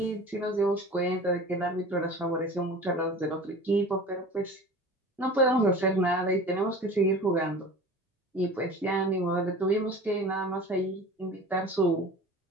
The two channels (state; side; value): normal; both; correlation 0.39